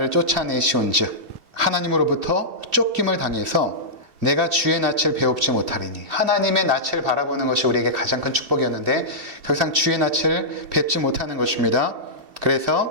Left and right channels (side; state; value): left; late; 2.7 ms